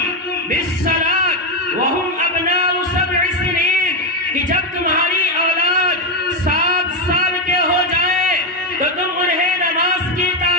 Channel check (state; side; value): normal; both; correlation 0.07